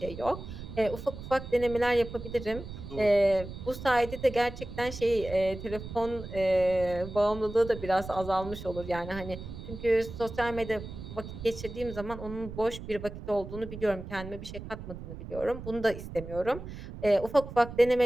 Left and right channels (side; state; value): right; noise; rumble, 11 dB below the sound